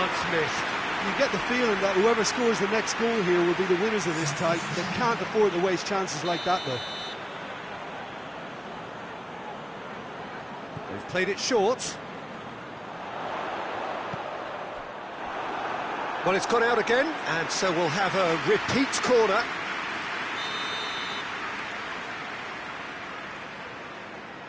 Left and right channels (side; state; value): both; identical; correlation 1.00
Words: missed. You get the feeling that whoever scores the next goal here will be the winners of this tie. They can't afford to waste chances like that, though. They've played it short. Well, it's gone out again, and so we'll have a repeat corner.